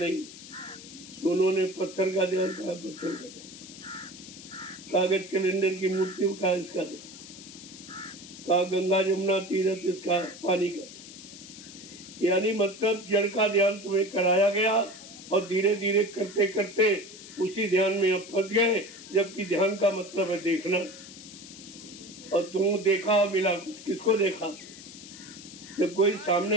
तो उन्होंने पत्थर का ध्यान कहा, पत्थर का ध्यान, कागज कैलेंडर की मूर्ति का इसका ध्यान, कहा गंगा जमुना तीर्थ इसका पानी का ध्यान। यानी मतलब जड़ का ध्यान तुम्हें कराया गया और धीरे धीरे करते करते उसी ध्यान में अब फंस गए। जबकि ध्यान का मतलब है देखना, और तुम देखा और मिला, किसको देखा? जब कोई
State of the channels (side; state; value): left; noise; hiss, 16 dB below the sound